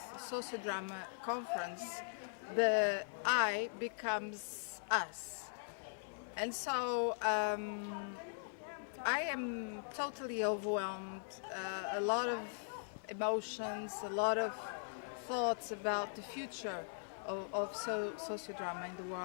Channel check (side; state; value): right; silent; digital silence